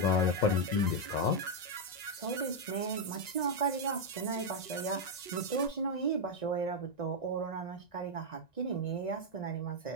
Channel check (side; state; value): right; late; 1.9 ms